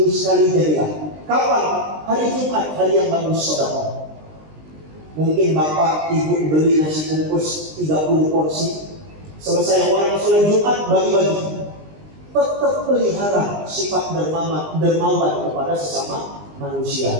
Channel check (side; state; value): left; late; 20 ms